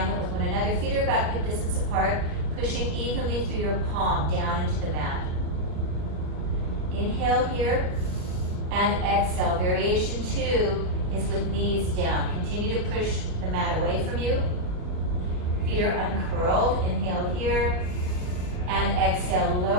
with one another. Feet are about hip distance apart, pushing evenly through your palm down into the mat. Inhale here and exhale. Variation 2 is with knees down. Continue to push the mat away from you. Feet are uncurled. Inhale here and exhale.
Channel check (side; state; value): left; late; 38 ms